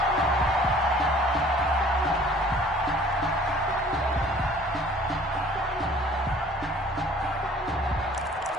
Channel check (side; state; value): both; normal; correlation 0.52